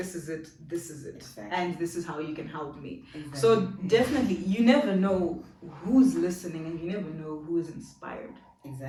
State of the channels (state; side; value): identical; both; correlation 1.00